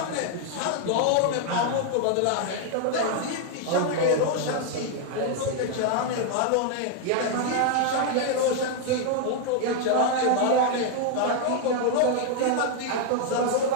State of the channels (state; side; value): different; both; correlation 0.00